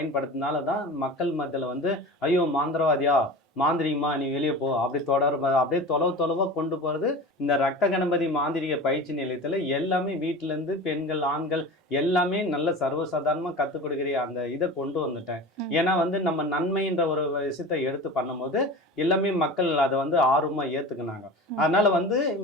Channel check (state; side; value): normal; both; correlation 0.33